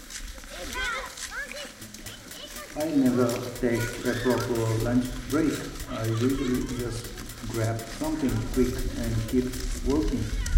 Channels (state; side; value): identical; both; correlation 1.00